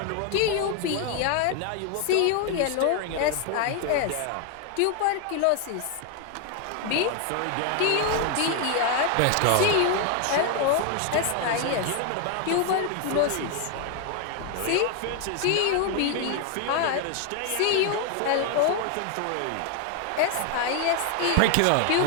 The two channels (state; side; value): different; both; correlation 0.00